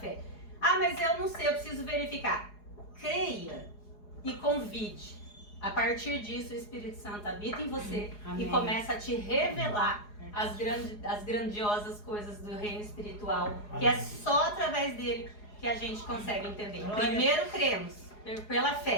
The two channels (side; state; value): right; late; 4.8 ms